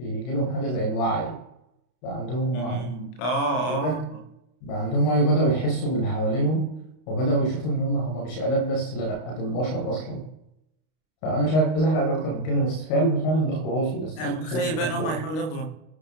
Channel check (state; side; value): late; right; 32 ms